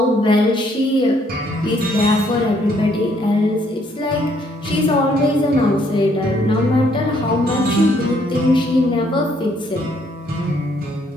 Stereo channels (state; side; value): normal; both; correlation 0.67